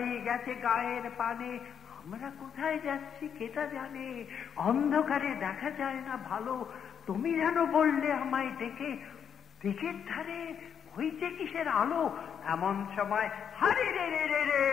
গেছে গায়ের পানে। আমরা কোথায় যাচ্ছি কেটা জানে, অন্ধকারে দেখা যায় না ভালো, তুমি যেন বললে আমায় ডেকে, দিকের ধারে হইছে কিসের আলো। এমন সময় হারে রে রে রে রে,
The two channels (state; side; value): quieter; right; 7.9 dB